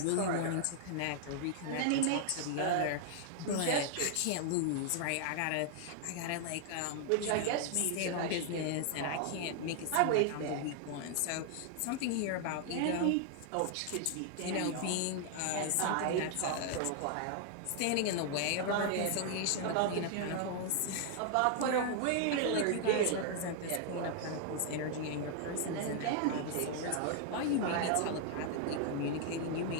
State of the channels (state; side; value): different; both; correlation 0.00